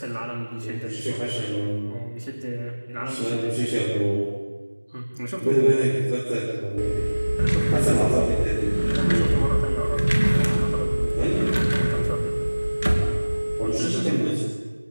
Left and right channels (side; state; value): both; inverted; correlation -1.00